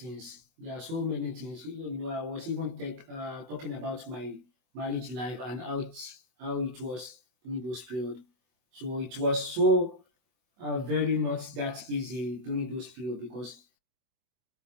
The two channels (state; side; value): late; left; 24 ms